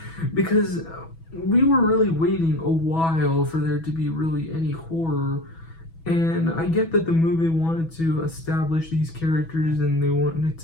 Because we were really waiting a while for there to be really any horror. And I get that the movie wanted to establish these characters and they wanted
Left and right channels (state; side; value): late; right; 6.1 ms